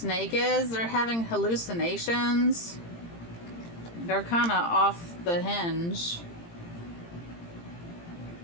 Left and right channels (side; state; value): right; late; 18 ms